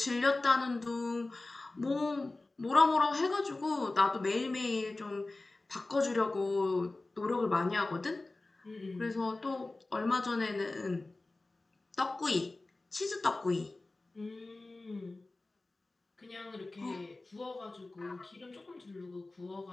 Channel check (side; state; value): right; quieter; 3.1 dB